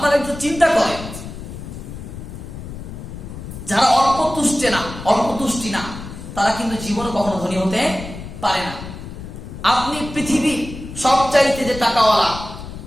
একটু চিন্তা করেন, যারা অল্প তুষ্টি না তারা কিন্তু জীবনে কখনো ধনী হতে পারে না। আপনি পৃথিবীর সবচাইতে যে টাকাওয়ালা,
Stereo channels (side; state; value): left; noise; rumble, 11 dB below the sound